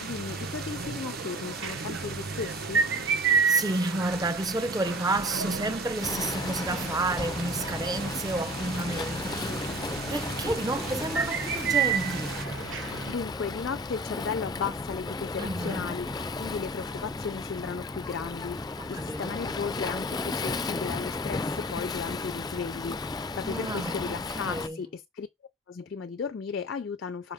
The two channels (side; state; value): both; normal; correlation 0.42